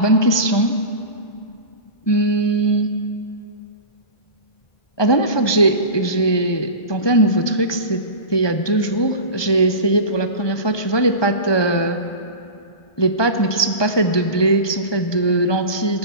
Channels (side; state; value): right; late; 1.2 ms